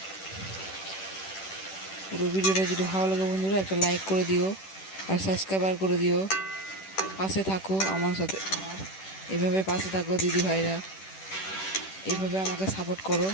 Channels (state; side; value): late; right; 10 ms